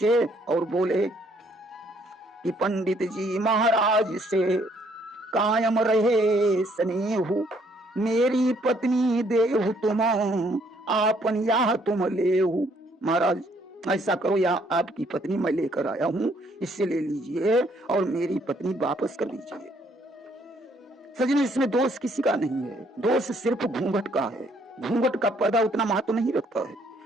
और बोले कि पंडित जी महाराज से कायम रहे स्नेहु, मेरी पत्नी देहु तुम आपन या तुम लेहु। महाराज ऐसा करो, या आपकी पत्नी मैं लेकर आया हूं, इससे ले लीजिए और मेरी पत्नी वापस कर दीजिए। सजने इसमें दोष किसी का नहीं है, दोष सिर्फ घूंघट का है। घूंघट का पर्दा उतना महत्व नहीं रखता है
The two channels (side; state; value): both; normal; correlation 0.66